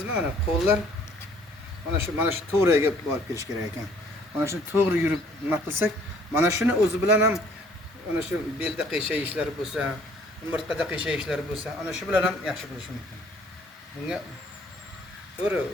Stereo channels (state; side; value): normal; both; correlation 0.59